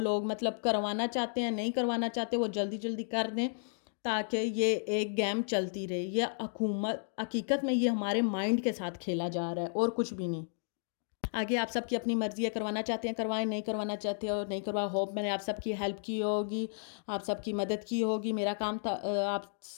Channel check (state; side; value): silent; right; digital silence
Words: مطلب کروانا چاہتے ہیں نہیں کروانا چاہتے وہ جلدی جلدی کر دیں تاکہ یہ ایک گیم چلتی رہے. یہ حقیقت میں یہ ہمارے مائنڈ کے ساتھ کھیلا جا رہا ہے اور کچھ بھی نہیں. آگے آپ سب کی اپنی مرضی ہے, کروانا چاہتے ہیں کروائیں, نہیں کروانا چاہتے ہو نہیں کروا. ہوپ میں نے آپ سب کی ہیلپ کی ہوگی, آپ سب کی مدد کی ہوگی. میرا کام تھا آپ